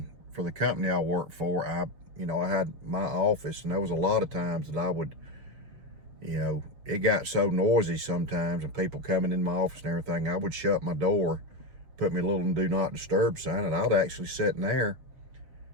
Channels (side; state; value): left; late; 7.5 ms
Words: for the company I worked for, I had my office, and there was a lot of times that I would, it got so noisy sometimes, and people coming in my office and everything, I would shut my door, put me a little do not disturb sign, and I'd actually sit in there